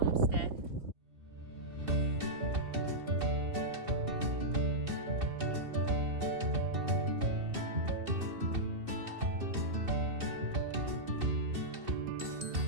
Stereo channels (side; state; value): left; late; 2.7 ms